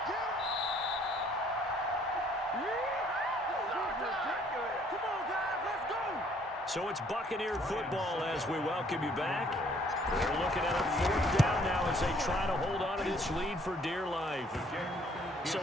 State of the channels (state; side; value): normal; both; correlation 0.62